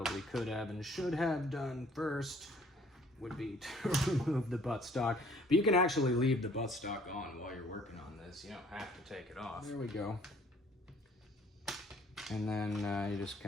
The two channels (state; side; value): normal; both; correlation 0.58